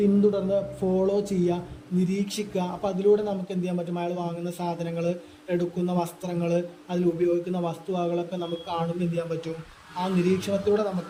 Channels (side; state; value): both; identical; correlation 1.00